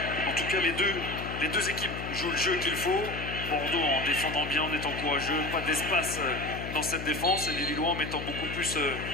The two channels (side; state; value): left; noise; hum, 7 dB below the sound